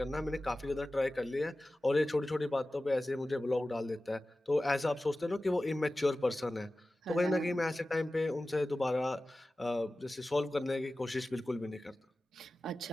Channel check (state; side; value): normal; both; correlation 0.96